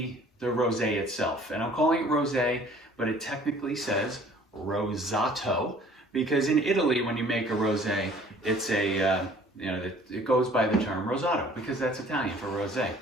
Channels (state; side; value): normal; both; correlation 0.53